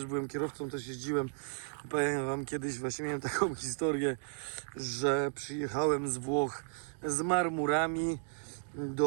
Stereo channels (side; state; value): left; silent; digital silence